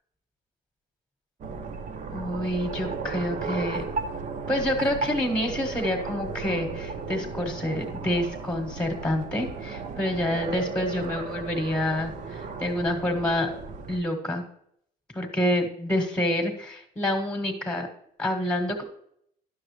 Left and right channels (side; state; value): both; normal; correlation 0.58